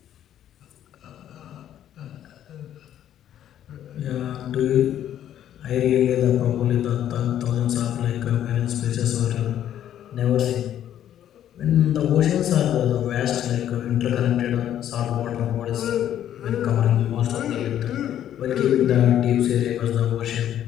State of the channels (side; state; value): right; quieter; 10.9 dB